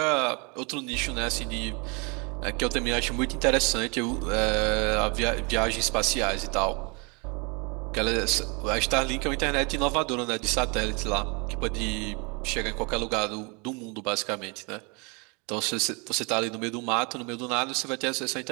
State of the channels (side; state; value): left; quieter; 31.0 dB